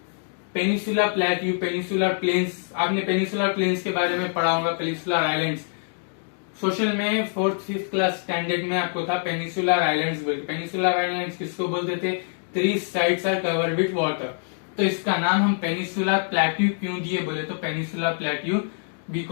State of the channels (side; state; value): right; silent; 58 dB below the other